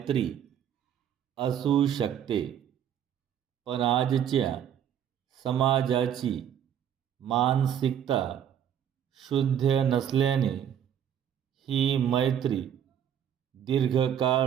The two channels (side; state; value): left; quieter; 9.4 dB